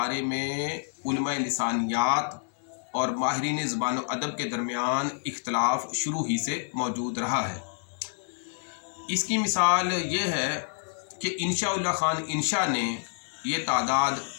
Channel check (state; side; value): silent; right; 59 dB below the other